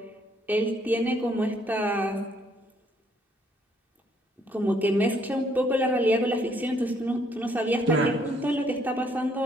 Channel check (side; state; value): both; normal; correlation 0.67